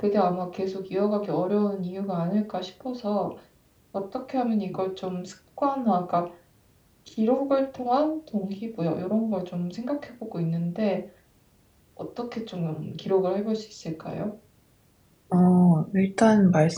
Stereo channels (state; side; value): identical; both; correlation 1.00